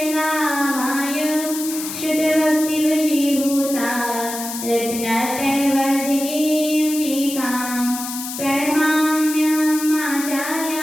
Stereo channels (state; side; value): noise; left; hiss, 8 dB below the sound